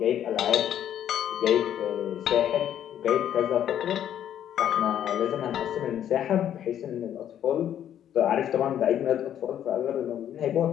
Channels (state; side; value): quieter; right; 10.4 dB